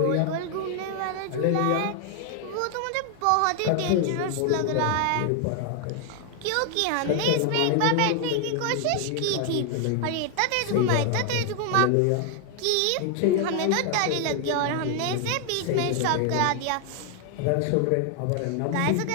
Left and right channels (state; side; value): different; both; correlation 0.00